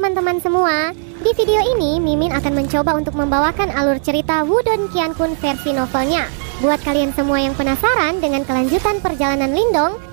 teman-teman semua, di video ini Mimin akan mencoba untuk membawakan alur cerita Wudong Qiankun versi novelnya. Buat kalian semua yang penasaran dengan kelanjutan perjalanan Lindong,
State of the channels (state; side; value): silent; left; 68 dB below the other